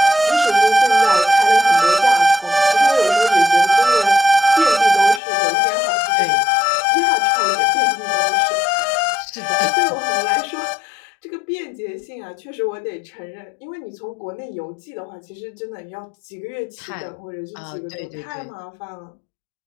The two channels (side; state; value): right; drops out; at 5.2 s